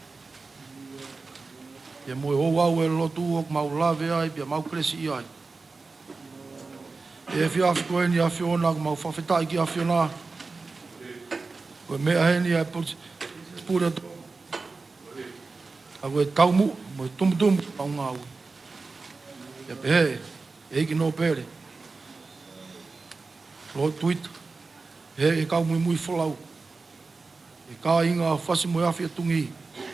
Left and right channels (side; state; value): left; quieter; 4.0 dB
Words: Pia moe hou au e lotu o mau lave ai, pia mau kresi i ai. E whia koeni a whiona, ko mau whawhetai ki a whiona. Koe mea heni a pura tō. A koe taumu, mo tumutumu au ngā ui. Ia pehe, e hiki no pere. Lo Tuita, he e kau mui wholau. E kā inga Fasi moe Afi a Tungi.